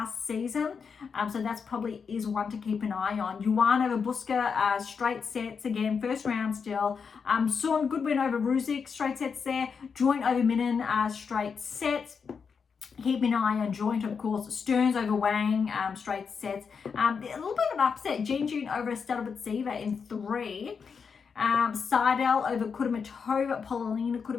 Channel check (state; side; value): quieter; right; 5.9 dB